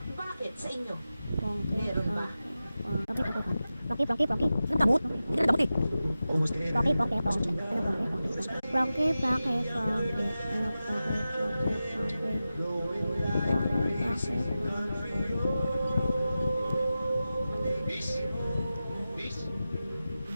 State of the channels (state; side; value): inverted; both; correlation -0.93